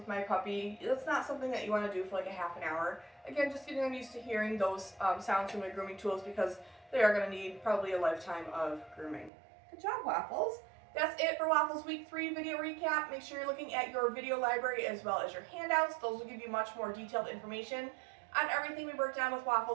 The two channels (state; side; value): drops out; left; at 9.3 s